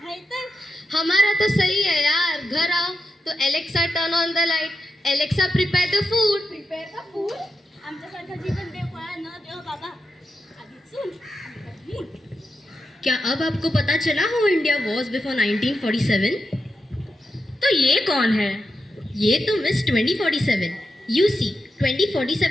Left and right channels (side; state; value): both; normal; correlation 0.88